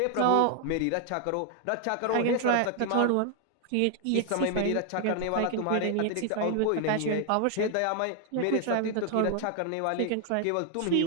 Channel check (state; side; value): different; both; correlation 0.00